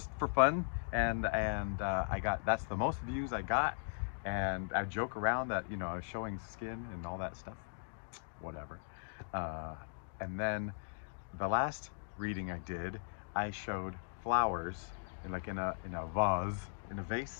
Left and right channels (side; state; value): right; silent; digital silence